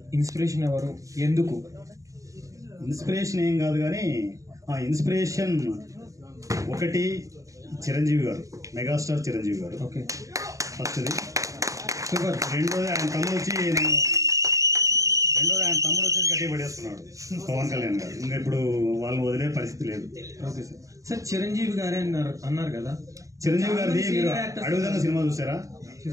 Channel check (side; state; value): left; late; 0.16 ms